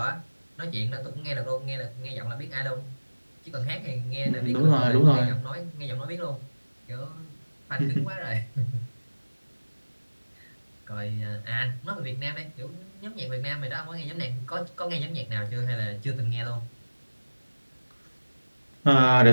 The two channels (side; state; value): both; inverted; correlation -1.00